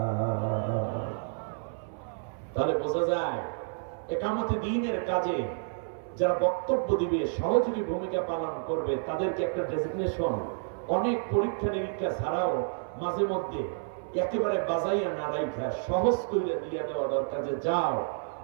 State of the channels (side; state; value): left; silent; 58 dB below the other